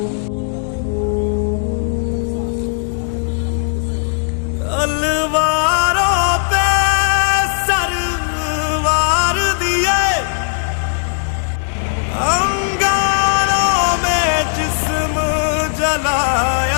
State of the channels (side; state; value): right; silent; digital silence